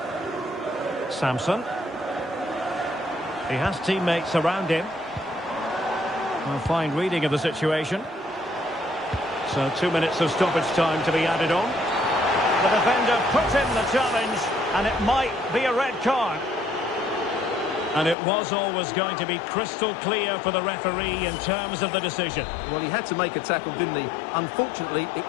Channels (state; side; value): drops out; right; at 18.2 s